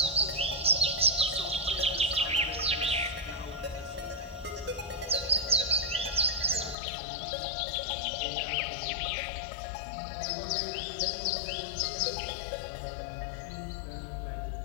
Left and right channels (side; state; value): right; drops out; at 6.8 s